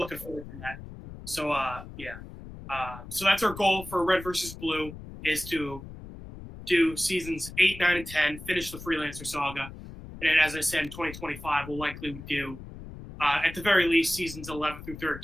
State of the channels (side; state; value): left; noise; rumble, 13 dB below the sound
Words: forward to that. So so that's our goal for Red versus Blue, is to do seasons 8, 9, and 10, finish the Freelancer saga, and then, as I said, in 2025 we'll likely do. At the very least, seasons 11 through